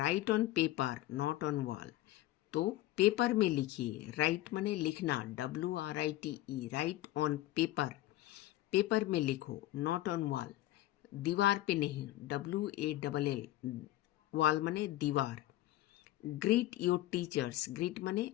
on paper not on wall, तो पेपर में लिखिए। राइट माने लिखना, WRITE, right on paper, paper में लिखो। नॉट ऑन वॉल, दीवार पे नहीं, WALL, वॉल माने दीवार। ग्रीट योर टीचर्स, ग्रीट माने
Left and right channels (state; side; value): quieter; right; 15.6 dB